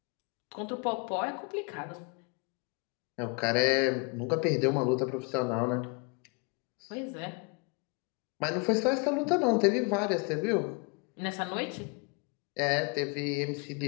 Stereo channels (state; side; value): quieter; right; 32.8 dB